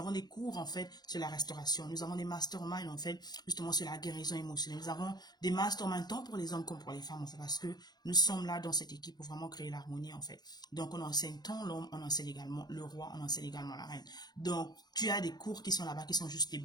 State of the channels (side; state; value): right; late; 0.20 ms